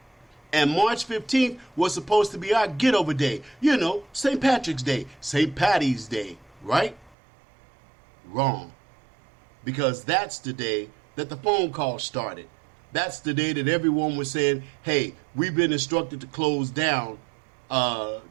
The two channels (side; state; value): left; drops out; at 7.2 s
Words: And March 15th was supposed to be our get over day. St. Patrick's Day, St. Patty's Day, right? Wrong. Because that's the day that the phone call started. That's the day that everyone was saying, hey, we've been instructed to close down.